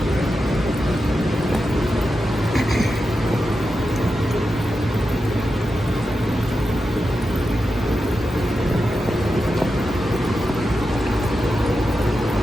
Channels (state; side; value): normal; both; correlation 0.89